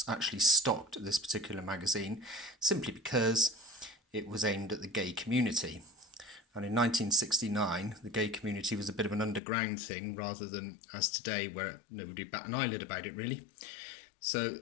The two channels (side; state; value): right; drops out; at 9.4 s